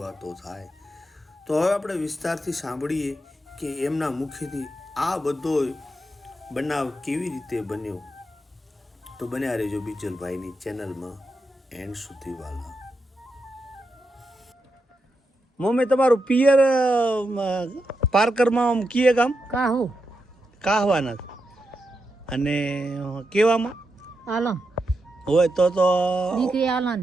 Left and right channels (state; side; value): normal; both; correlation 0.86